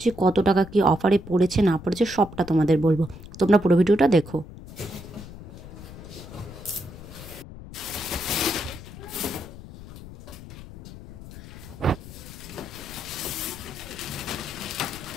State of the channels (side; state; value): left; noise; rumble, 14 dB below the sound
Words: কত টাকা কি অফারে পড়েছে না পড়েছে সবটা তোমাদের বলবো। তোমরা পুরো ভিডিওটা দেখো।